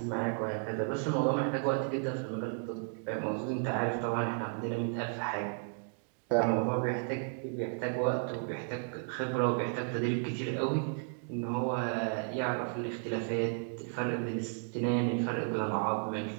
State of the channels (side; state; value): left; silent; 55 dB below the other